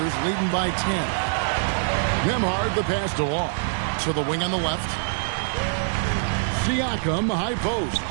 leading by 10. Nembhard the pass to Law. To the wing on the left. Siakam, high post.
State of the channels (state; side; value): silent; left; digital silence